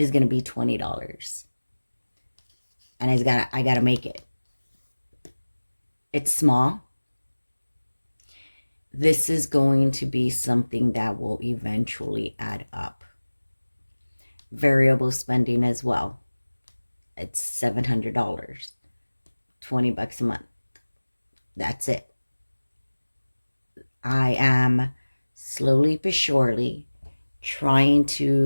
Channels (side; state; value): both; inverted; correlation -1.00